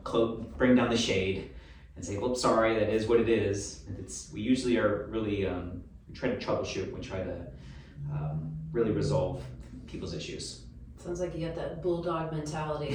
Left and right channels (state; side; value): identical; both; correlation 1.00